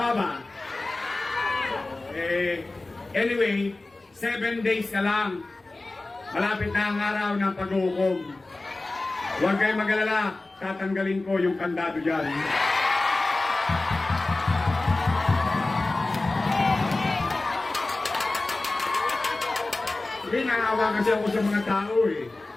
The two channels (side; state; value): right; quieter; 3.1 dB